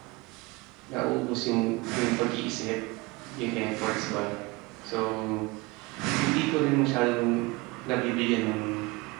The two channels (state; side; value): quieter; left; 23.8 dB